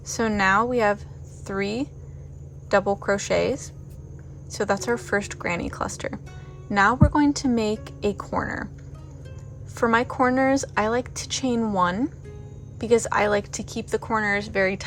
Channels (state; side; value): identical; both; correlation 1.00